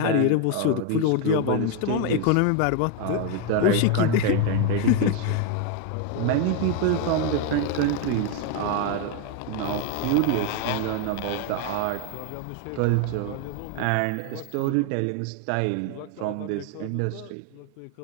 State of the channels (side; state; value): both; different; correlation 0.01